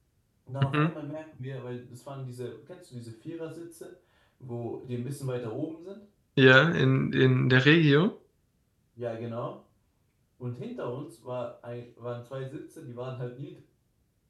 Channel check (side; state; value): both; identical; correlation 1.00